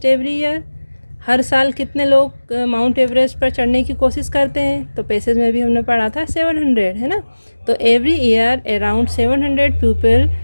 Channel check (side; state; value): both; inverted; correlation -1.00